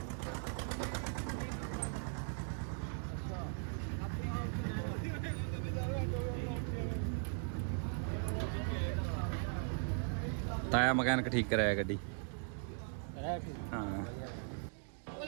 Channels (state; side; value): silent; left; 52 dB below the other